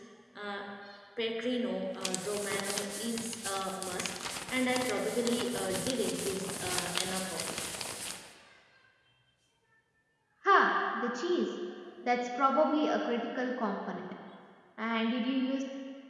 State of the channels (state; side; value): identical; both; correlation 1.00